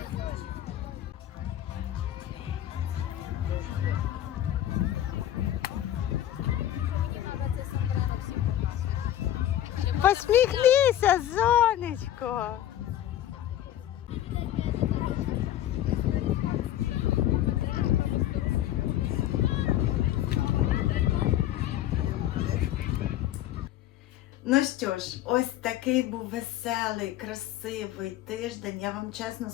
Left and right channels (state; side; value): quieter; right; 12.4 dB